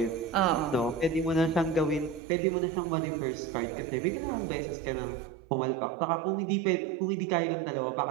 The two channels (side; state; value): left; drops out; at 2.2 s